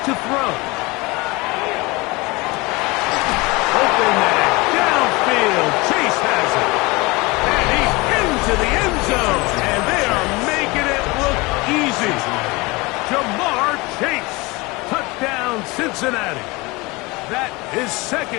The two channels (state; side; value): quieter; right; 24.1 dB